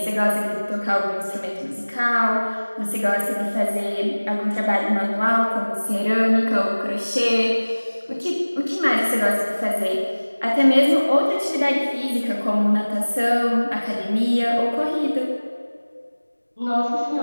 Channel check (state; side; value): inverted; both; correlation -1.00